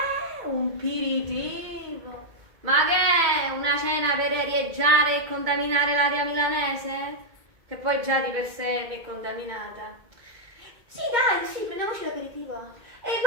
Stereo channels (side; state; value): left; late; 2.2 ms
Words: Un aperitivo? Ma che è? Una cena per arieggiare e contaminare l'aria milanese? Che poi già di per sé è contaminata. Sì, dai, sì, prendiamoci l'aperitivo. E